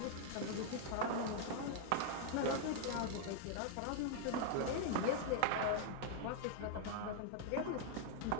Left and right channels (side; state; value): both; different; correlation 0.00